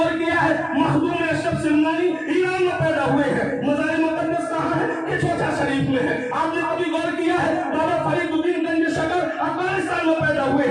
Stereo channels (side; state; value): both; identical; correlation 1.00